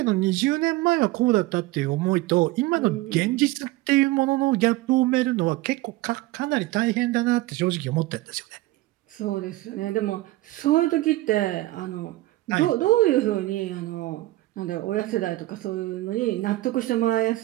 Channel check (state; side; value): quieter; left; 18.3 dB